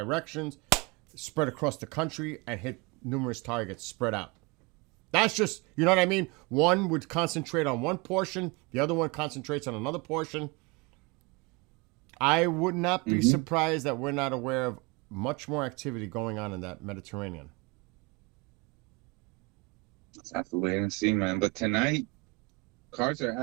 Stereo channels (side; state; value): left; quieter; 27.2 dB